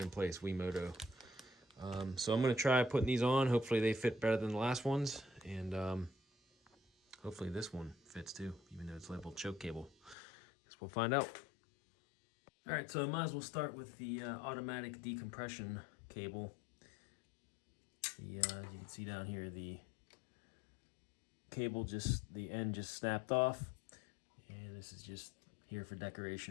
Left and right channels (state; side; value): drops out; right; at 10.2 s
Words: place, Wemoto. So I'm going to try putting these on. Hopefully they fit better than the last ones, and hopefully this one fits too, even though it's labeled choke cable. Guess we'll find out. All right, so I might as well start with the automatic decompression cable. As you can see down here, the cable the end just snapped off, and this is just here for